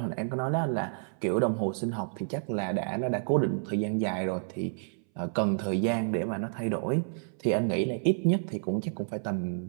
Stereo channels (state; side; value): silent; left; 58 dB below the other